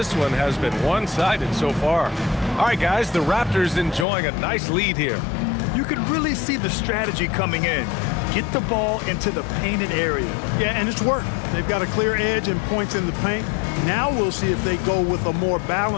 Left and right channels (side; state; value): right; drops out; at 4.0 s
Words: one has been one-sided so far. All right, guys, the Raptors enjoying a nice lead here. You can really see the strategy coming in. Get the ball into the painted area. Yeah, and it's worked. They've got a clear edge and points in the paint. Now we'll see if they go with a more